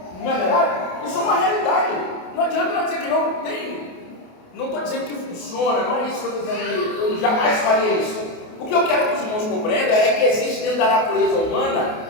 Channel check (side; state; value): right; late; 28 ms